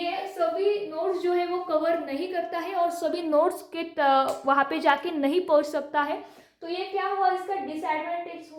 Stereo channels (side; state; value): both; identical; correlation 1.00